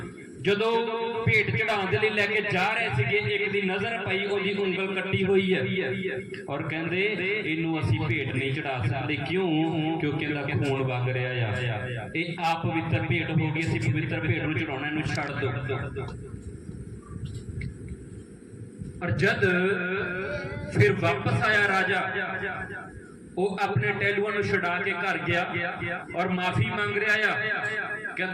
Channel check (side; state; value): both; identical; correlation 1.00